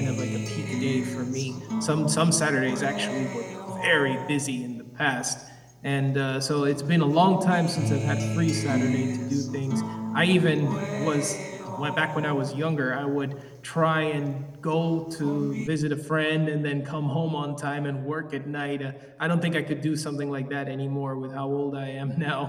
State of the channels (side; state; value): both; identical; correlation 1.00